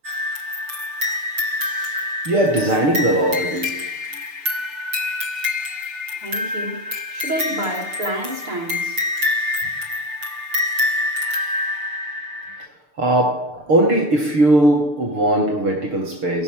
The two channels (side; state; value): left; late; 6.7 ms